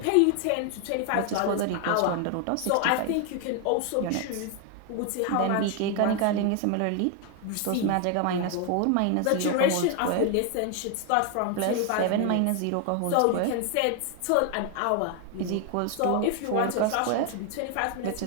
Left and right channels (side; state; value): both; different; correlation 0.01